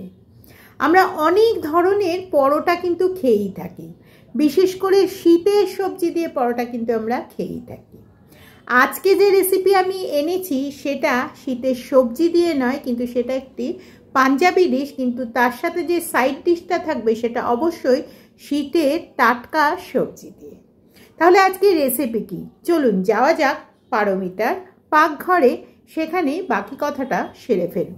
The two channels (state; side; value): identical; both; correlation 1.00